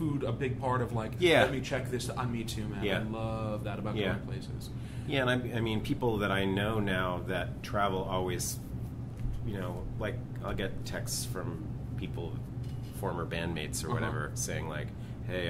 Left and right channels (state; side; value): identical; both; correlation 1.00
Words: a big part of like, let me check this on me too, man. Yeah. I love that about going places. Yeah, and I mean, people that I know now that travel always, like I'll get texts from people, former bandmates or whatever, saying like, hey,